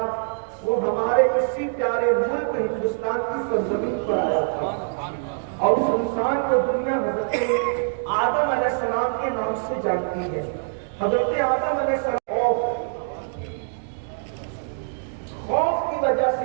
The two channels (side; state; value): left; silent; digital silence